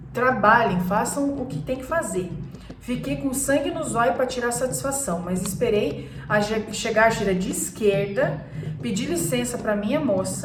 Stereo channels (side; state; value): both; identical; correlation 1.00